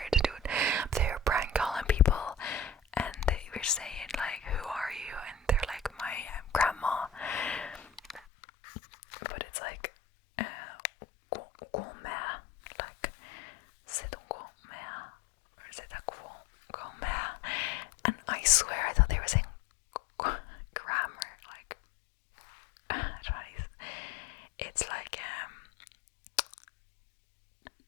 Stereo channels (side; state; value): right; drops out; at 8.2 s